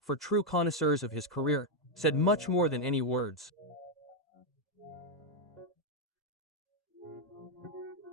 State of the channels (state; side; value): normal; both; correlation 0.01